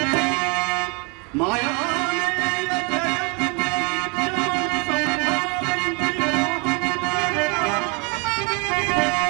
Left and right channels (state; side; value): quieter; left; 32.6 dB